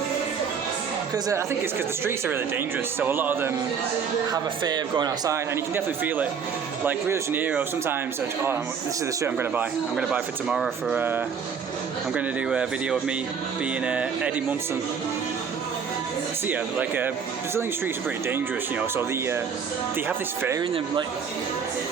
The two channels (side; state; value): left; quieter; 6.5 dB